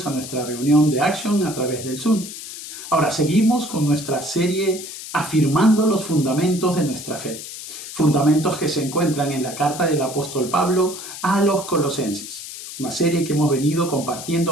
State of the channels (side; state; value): left; noise; hiss, 11 dB below the sound